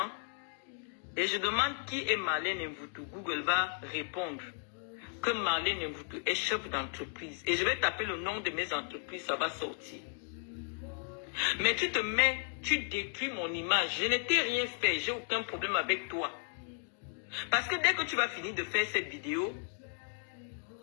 et je demande qui est Marlène Mvoutou. Google va répondre que Marlène Mvoutou est chef d'entreprise. Et je vais taper le nom de mes entreprises, ça va sortir. Mais tu te mets, tu détruis mon image. Je ne t'ai rien fait, j'ai aucun problème avec toi. Parce que dès que tu vas finir de faire cette vidéo,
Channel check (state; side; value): silent; right; 55 dB below the other